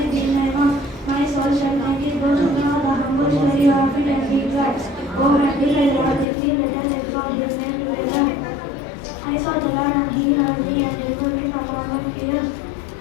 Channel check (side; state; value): right; drops out; at 6.2 s